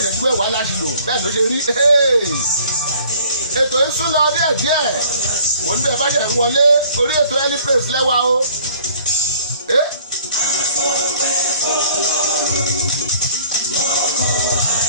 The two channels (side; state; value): both; inverted; correlation -0.55